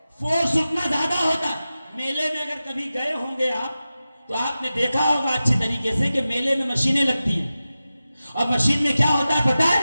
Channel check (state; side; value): inverted; both; correlation -0.94